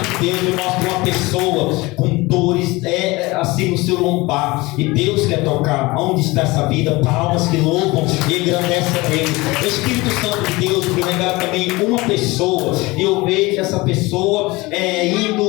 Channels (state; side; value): quieter; right; 22.2 dB